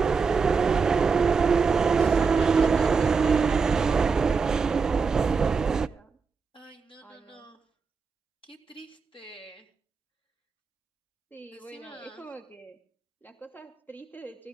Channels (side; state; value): left; quieter; 5.1 dB